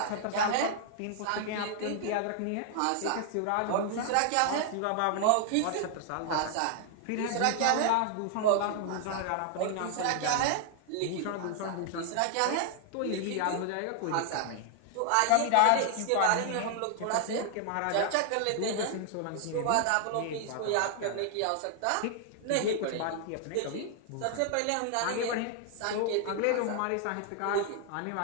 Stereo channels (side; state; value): both; different; correlation 0.00